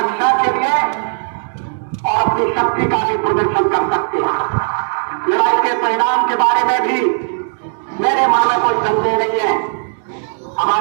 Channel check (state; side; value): silent; left; digital silence